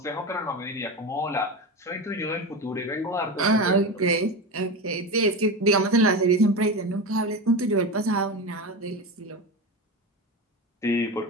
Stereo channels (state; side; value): normal; both; correlation 0.22